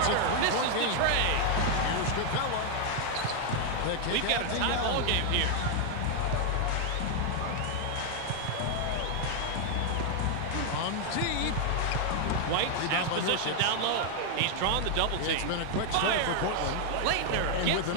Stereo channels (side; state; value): both; different; correlation 0.00